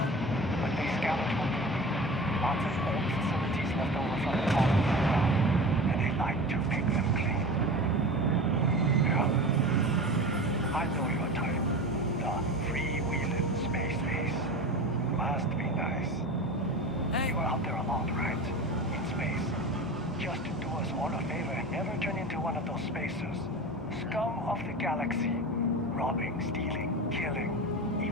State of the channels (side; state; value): both; normal; correlation 0.32